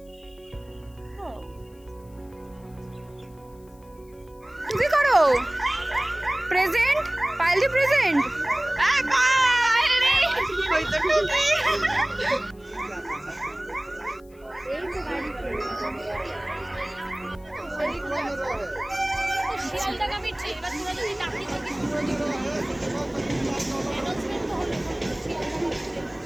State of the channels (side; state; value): left; noise; hiss, 30 dB below the sound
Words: কি করো? প্রেজেন্ট পাইলি প্রেজেন্ট